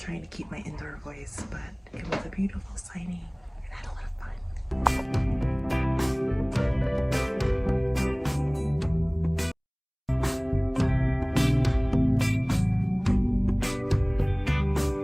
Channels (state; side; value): identical; both; correlation 1.00